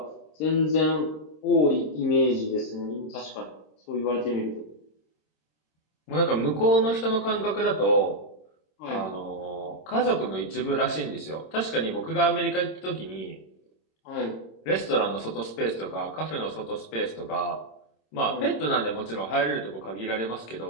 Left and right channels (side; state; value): right; late; 26 ms